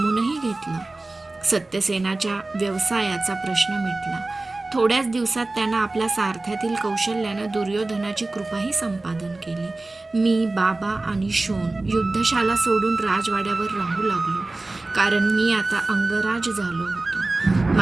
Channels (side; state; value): left; quieter; 3.1 dB